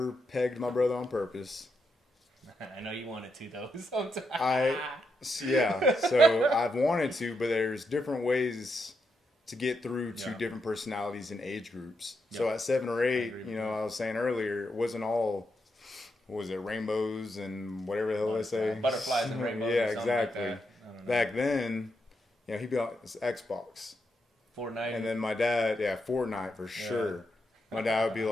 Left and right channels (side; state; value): both; normal; correlation 0.82